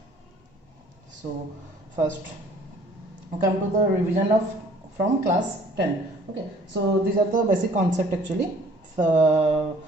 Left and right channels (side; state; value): both; normal; correlation 0.55